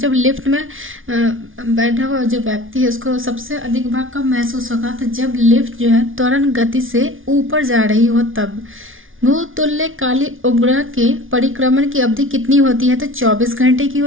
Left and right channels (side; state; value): left; late; 0.58 ms